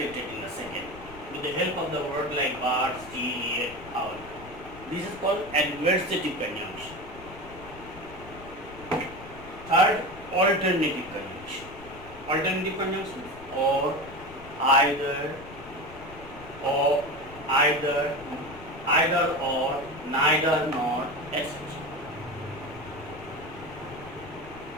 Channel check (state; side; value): noise; left; rumble, 17 dB below the sound